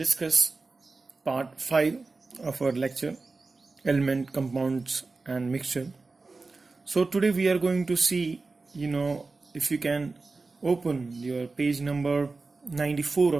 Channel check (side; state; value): left; quieter; 3.8 dB